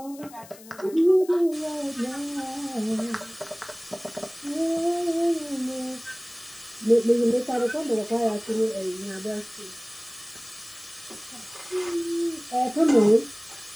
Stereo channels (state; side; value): noise; left; hiss, 20 dB below the sound